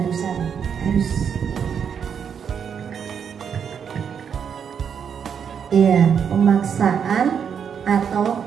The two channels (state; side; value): quieter; left; 7.4 dB